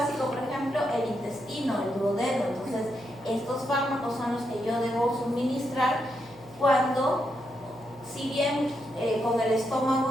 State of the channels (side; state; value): right; noise; hum, 22 dB below the sound